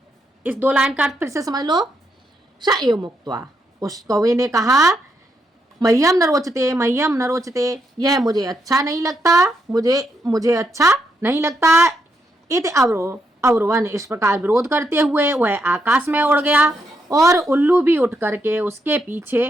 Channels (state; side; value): normal; both; correlation 0.79